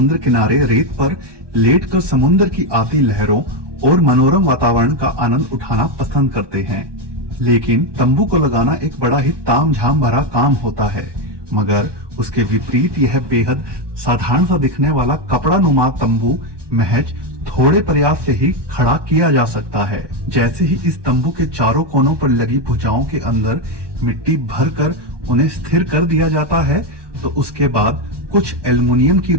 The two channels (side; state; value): left; late; 1.2 ms